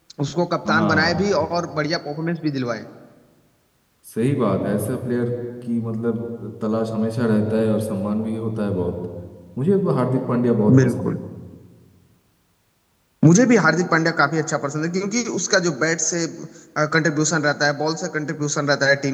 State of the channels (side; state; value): both; identical; correlation 1.00